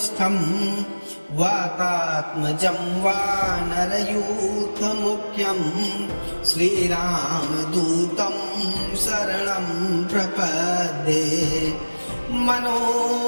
वातात्मजं वानरयूथमुख्यं श्रीरामदूतं शरणं प्रपद्ये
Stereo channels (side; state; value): both; inverted; correlation -1.00